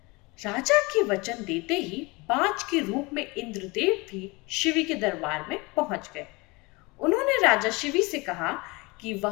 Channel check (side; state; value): right; quieter; 25.4 dB